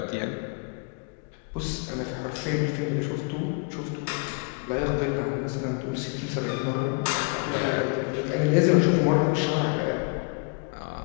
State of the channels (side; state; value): right; quieter; 34.3 dB